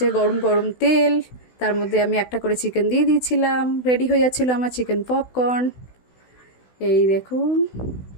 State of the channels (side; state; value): right; late; 16 ms